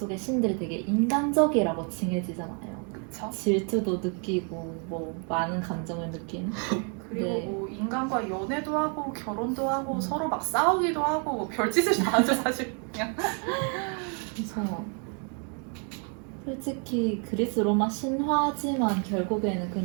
신들이 되게 인간적이라고 칭해지잖아요. 그쵸? 질투도 느끼고 뭐 많은 감정을 느끼는. 그리고 네. 뭐 인간과 연애도 하고 결혼도 하고 서로 막 싸우기도 하고 뭐 별짓을 다 하죠 사실. 그냥. 그래서 솔직히 그리스 로마 신화지만 결국에는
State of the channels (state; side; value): quieter; left; 39.1 dB